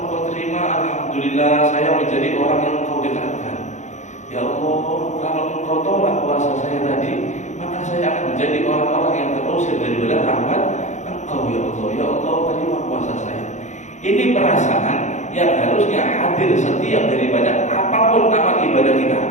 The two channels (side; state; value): right; late; 0.35 ms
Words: Engkau terima, alhamdulillah, saya menjadi orang yang Engkau dekatkan. Ya Allah, kalau Engkau tolak puasa saya tadi, maka saya akan menjadi orang-orang yang terusir daripada rahmat Engkau. Ya Allah, ya Allah, terima puasa saya. Ini perasaan yang harusnya hadir setiap daripada apapun amal ibadah kita.